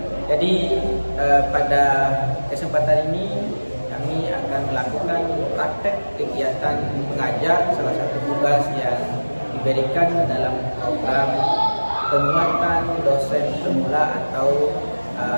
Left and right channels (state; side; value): inverted; both; correlation -1.00